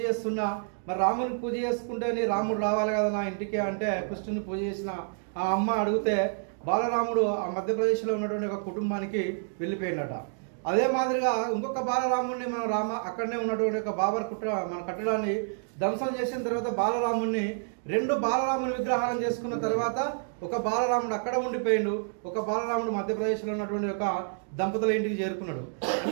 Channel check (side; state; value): left; silent; digital silence